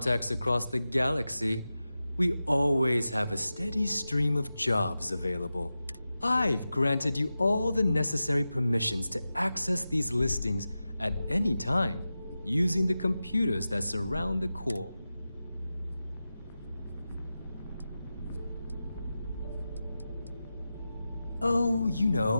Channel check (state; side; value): inverted; both; correlation -0.93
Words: across the galaxy, we always have a steady stream of jobs available. I've granted you all the necessary permissions to access these listings at any time, using the computers that surround the core. Oh, you